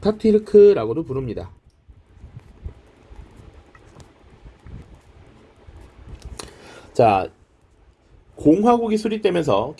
부릅니다. 자, 공화국이 수립되면서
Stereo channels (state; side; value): identical; both; correlation 1.00